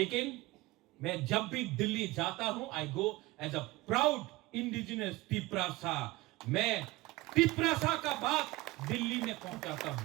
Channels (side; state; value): left; quieter; 19.9 dB